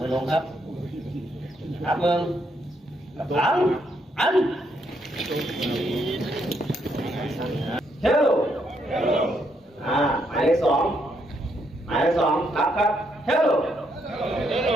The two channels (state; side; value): normal; both; correlation 0.75